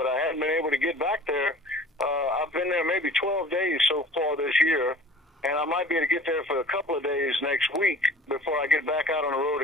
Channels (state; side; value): normal; both; correlation 0.45